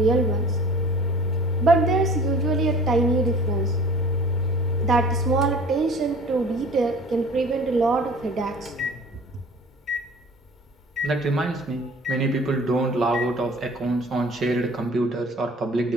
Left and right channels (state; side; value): normal; both; correlation 0.45